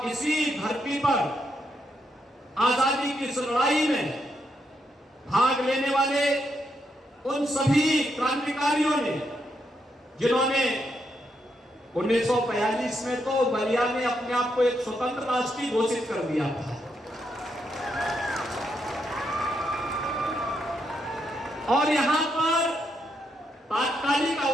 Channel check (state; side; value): normal; both; correlation 0.80